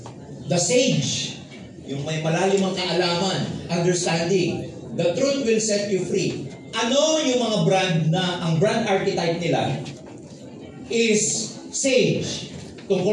The sage. Yung may malalimang kaalaman, understanding. The truth will set you free. Ano yung mga brand na, ang brand archetype nila is sage.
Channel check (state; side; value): identical; both; correlation 1.00